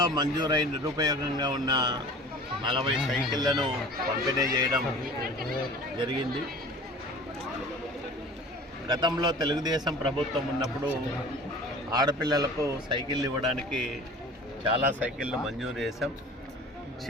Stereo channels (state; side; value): normal; both; correlation 0.42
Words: మంజూరై నిరుపయోగంగా ఉన్న 40 సైకిళ్లను పంపిణీ చేయడం జరిగింది. గతంలో తెలుగుదేశం ప్రభుత్వం ఉన్నప్పుడు ఆడపిల్లలకు సైకిళ్ళు ఇవ్వడానికి చాలా సైకిళ్ళు మంజూరు చేశాం.